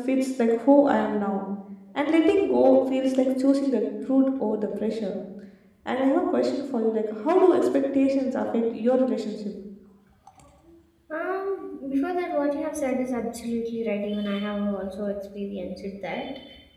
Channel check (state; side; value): identical; both; correlation 1.00